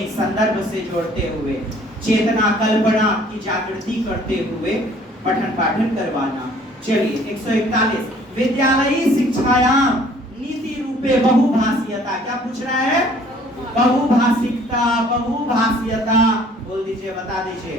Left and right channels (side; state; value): both; normal; correlation 0.56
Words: संदर्भ से जोड़ते हुए, चेतना कल्पना की जागृति करते हुए पठन पाठन करवाना। चलिए 141 विद्यालयी शिक्षायाम नीति रूपे बहुभाषीयता। क्या पूछ रहा है? बहुभाषिकता, बहुभाषीयता। बोल दीजिए, बता